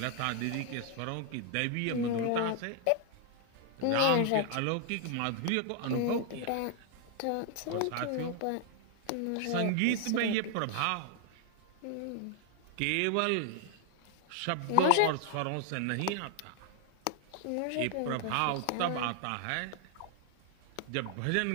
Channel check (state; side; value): different; both; correlation 0.00